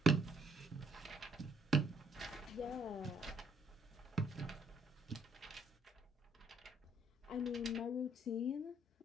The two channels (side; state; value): both; normal; correlation 0.67